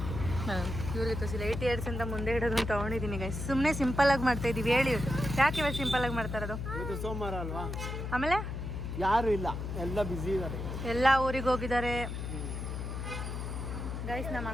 ಇವ್ರಿಗೆ ತೋರಿಸಿಲ್ಲ, 8 ಇಯರ್ಸ್ ಅಂತ ಮುಂದೆ ಇಡೋದು ಅಂತ ತೊಗೊಂಡಿದ್ದೀನಿ ಗೈಸ್. ಸುಮ್ಮನೆ ಸಿಂಪಲ್ ಆಗಿ ಮಾಡ್ತಾ ಇದೀವಿ. ಹೇಳಿ ಯಾಕೆ ಇವಾಗ ಸಿಂಪಲ್ ಆಗಿ ಮಾಡ್ತಾ ಇರೋದು? ಸೋಮವಾರ ಅಲ್ವಾ, ಆಮೇಲೆ ಯಾರು ಇಲ್ಲ, ಎಲ್ಲ ಬಿಸಿ ಇದ್ದಾರೆ, ಎಲ್ಲ ಊರಿಗೆ ಹೋಗಿದ್ದಾರೆ ಗೈಸ್. ನಮ್ಮ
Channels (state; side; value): noise; left; hum, 5 dB below the sound